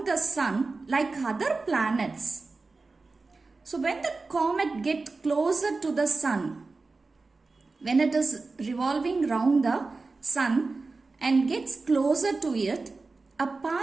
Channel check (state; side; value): quieter; left; 3.8 dB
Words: the sun like other planets. So when the comet gets closer to the sun, when it is revolving round the sun and gets closer to it, a